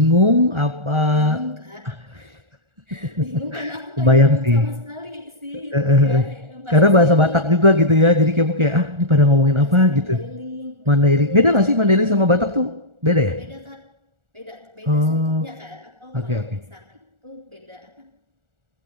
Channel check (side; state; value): left; late; 1.4 ms